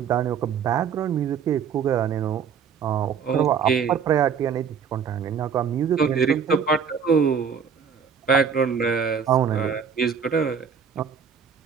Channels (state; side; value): quieter; left; 6.8 dB